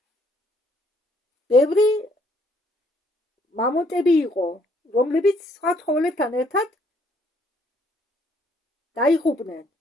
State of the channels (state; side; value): normal; both; correlation 0.66